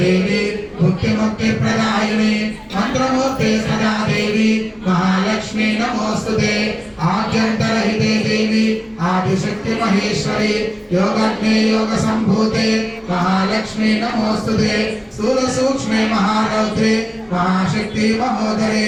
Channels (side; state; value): both; identical; correlation 1.00